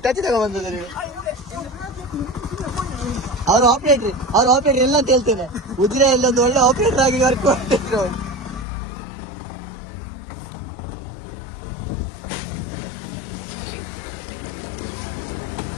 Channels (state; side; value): drops out; right; at 8.7 s